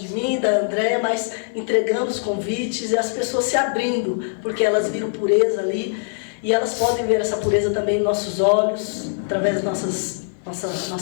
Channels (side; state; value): right; silent; digital silence